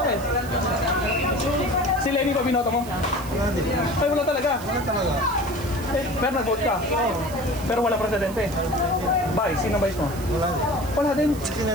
Si Lenny pa binoto mo? Ay, wala talaga. Eh, pero nag-vote ka. Pero wala presidente. Vice, sino vice mo? Wala din.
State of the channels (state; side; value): noise; right; hiss, 17 dB below the sound